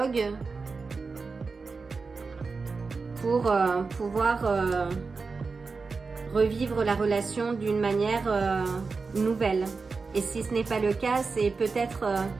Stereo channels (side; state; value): left; quieter; 4.4 dB